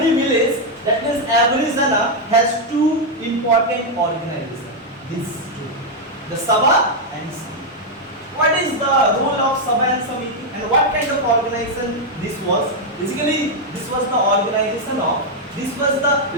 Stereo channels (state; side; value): normal; both; correlation 0.00